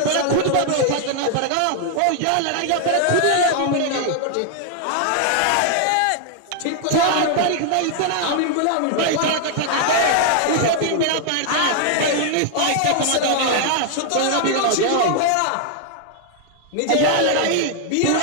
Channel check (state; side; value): different; both; correlation 0.00